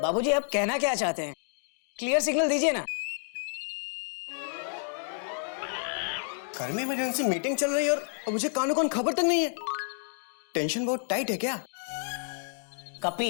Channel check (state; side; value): silent; right; digital silence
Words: बाबूजी आप कहना क्या चाहते हैं? क्लियर सिग्नल दीजिए ना। घर में इमरजेंसी मीटिंग चल रही है और मुझे कानों कान खबर तक नहीं है। टेंशन बहुत टाइट है क्या?